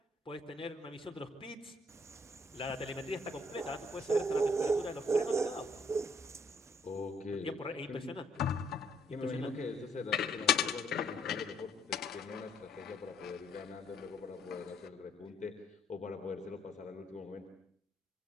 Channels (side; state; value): both; normal; correlation 0.68